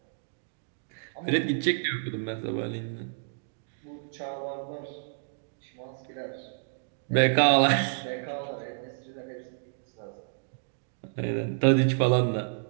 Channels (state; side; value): silent; left; digital silence